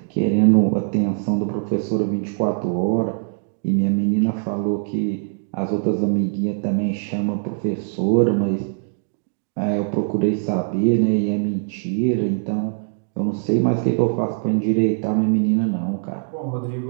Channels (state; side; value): silent; left; digital silence